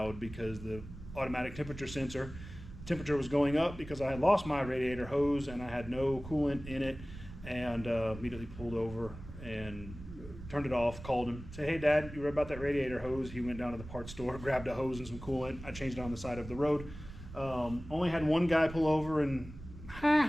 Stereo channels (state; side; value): noise; right; rumble, 13 dB below the sound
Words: because the automatic temperature sensor temperature was going up, because I had lost my radiator hose and I had no coolant in it, and immediately pulled over and turned it off, called him, said, hey Dad, you read about that radiator hose? He went down to the parts store, grabbed a hose and some coolant. I changed it on the side of the road. Only had one guy pull over and